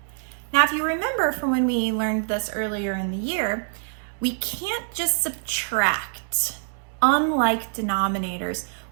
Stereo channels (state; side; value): silent; left; digital silence